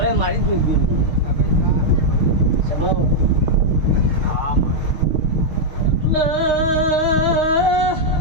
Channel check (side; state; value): left; late; 6.5 ms